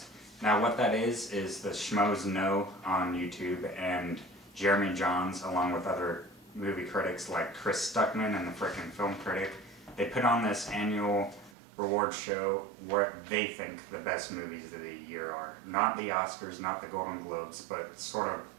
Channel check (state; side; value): drops out; left; at 11.6 s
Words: Now what that is the Schmoes Know on YouTube and Jeremy Johns, along with other movie critics like Chris Stuckman and the Frickin' Film Critic. They put on this annual reward show where they think the best movies of the year are. Not the Oscars, not the Golden Globes, but sort of